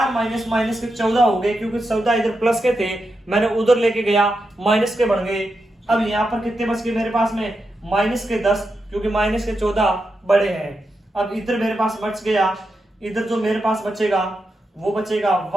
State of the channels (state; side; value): normal; both; correlation 0.87